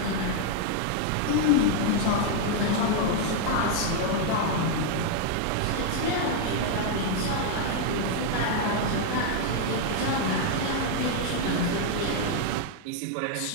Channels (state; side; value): different; both; correlation 0.00